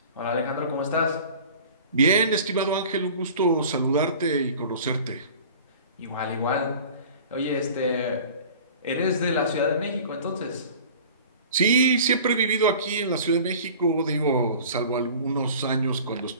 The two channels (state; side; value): inverted; both; correlation -0.43